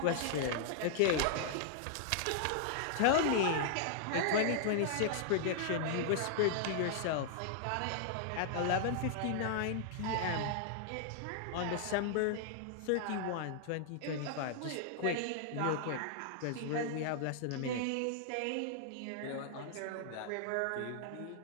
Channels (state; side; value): different; both; correlation -0.01